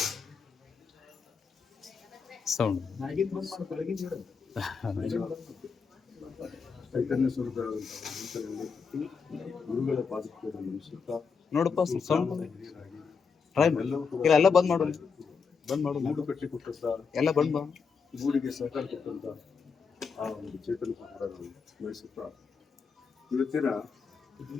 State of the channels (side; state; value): right; quieter; 5.6 dB